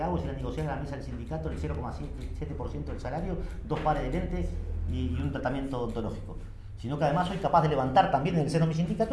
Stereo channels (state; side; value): identical; both; correlation 1.00